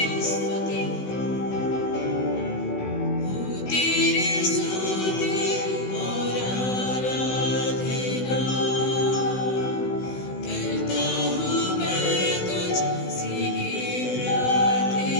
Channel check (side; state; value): right; late; 16 ms